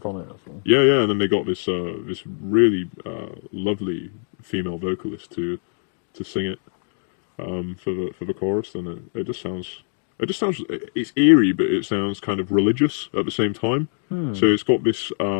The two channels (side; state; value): right; silent; digital silence